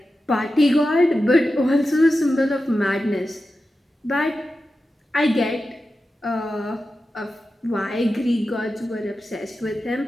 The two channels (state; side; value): normal; both; correlation 0.92